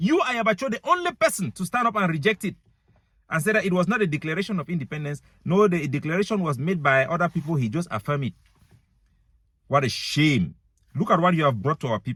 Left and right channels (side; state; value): both; identical; correlation 1.00